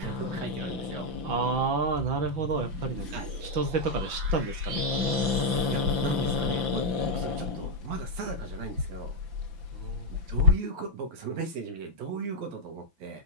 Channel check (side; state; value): left; late; 5.9 ms